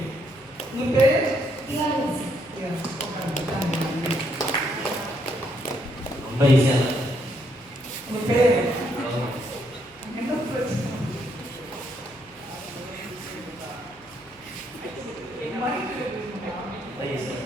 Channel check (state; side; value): noise; right; hum, 28 dB below the sound